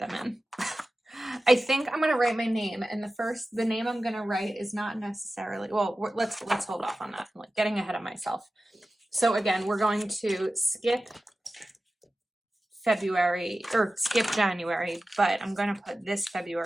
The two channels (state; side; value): normal; both; correlation 0.95